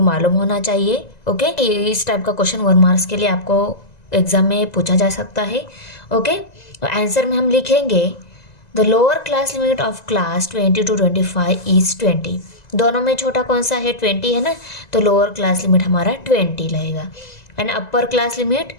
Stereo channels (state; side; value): late; right; 1.9 ms